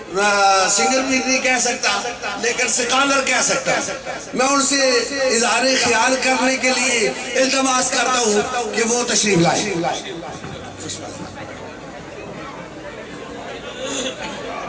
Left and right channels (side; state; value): both; identical; correlation 1.00